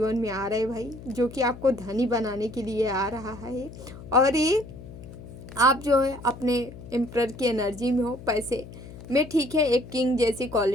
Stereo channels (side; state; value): left; noise; hum, 15 dB below the sound